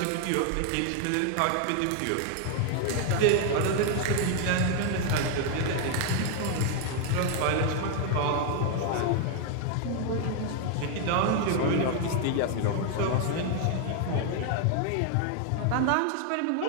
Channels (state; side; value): different; both; correlation 0.00